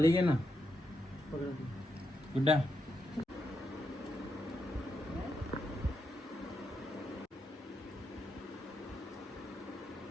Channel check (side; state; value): both; normal; correlation 0.83